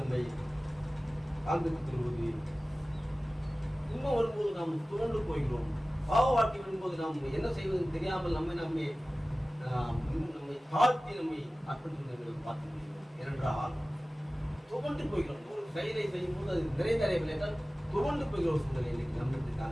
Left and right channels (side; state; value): both; normal; correlation 0.97